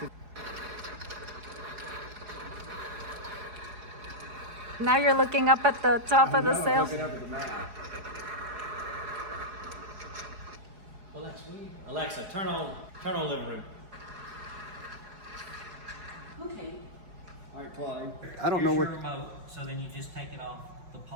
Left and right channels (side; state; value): left; late; 4.8 ms